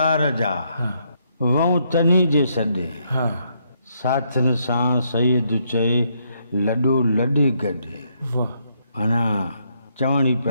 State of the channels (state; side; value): inverted; both; correlation -0.74